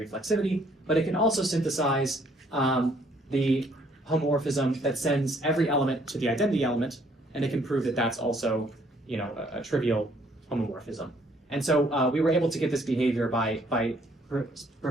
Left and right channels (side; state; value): both; normal; correlation 0.65